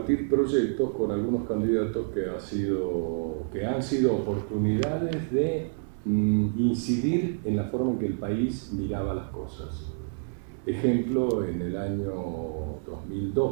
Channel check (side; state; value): left; silent; digital silence